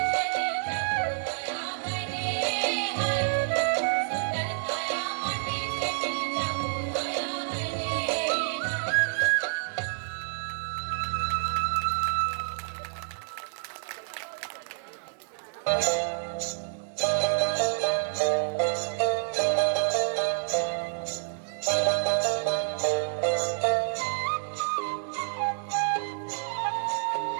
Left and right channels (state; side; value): silent; left; digital silence